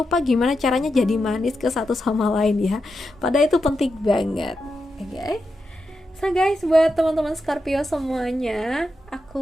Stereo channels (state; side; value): normal; both; correlation 0.87